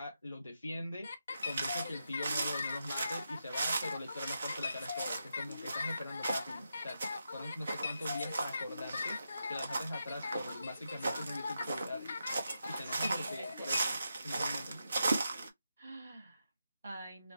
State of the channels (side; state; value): both; inverted; correlation -0.86